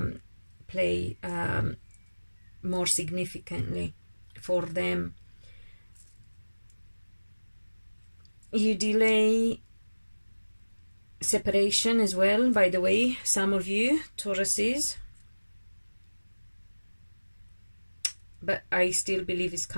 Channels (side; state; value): both; inverted; correlation -1.00